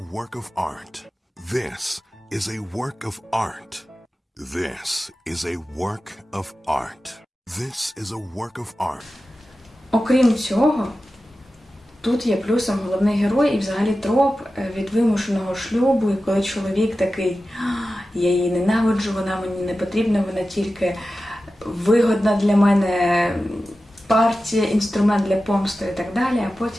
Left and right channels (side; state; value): both; normal; correlation 0.94